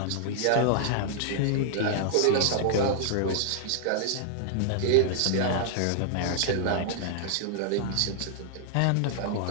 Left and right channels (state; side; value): different; both; correlation -0.01